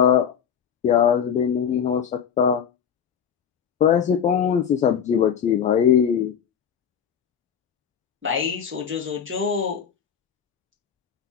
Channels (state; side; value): quieter; right; 8.0 dB